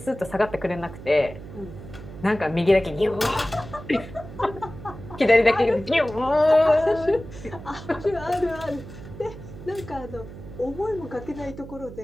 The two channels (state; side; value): noise; right; hum, 14 dB below the sound